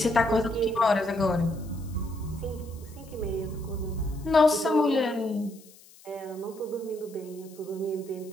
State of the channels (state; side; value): noise; left; hiss, 24 dB below the sound